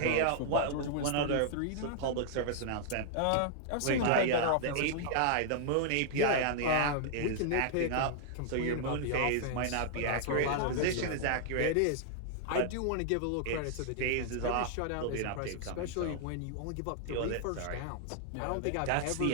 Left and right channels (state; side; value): different; both; correlation -0.01